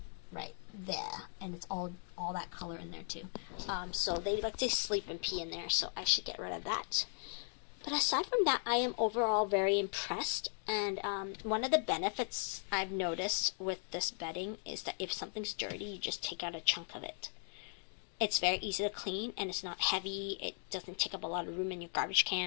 right there, and it's all that color in there too. So they like to sleep and pee in there, so I should get rid of that. But aside from that, I am overall very impressed, and one of the benefits I've noticed with this bedding is that if something's dirty, you just take out a chunk of it. It's very easy to clean, and it's not heavy. It doesn't take up a lot of room in your garbage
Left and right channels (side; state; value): right; silent; 52 dB below the other